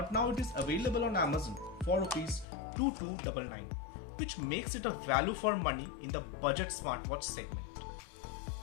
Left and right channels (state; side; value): drops out; right; at 2.5 s